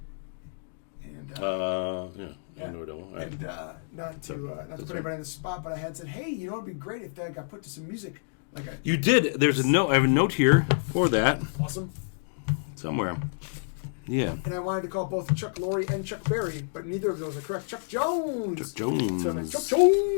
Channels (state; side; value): silent; right; digital silence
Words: And, I know it all. All right. And not to put anybody in the spot, but I had said, hey, you know what would be great if that got put to some music. You did. There's a note. I have a note here for that. Awesome. Somewhere. Yeah. And I wanted to call both Chuck Lorre and Chuck Berry, but neither of those are correct. Chuck Jones. Chuck Jones. So Chuck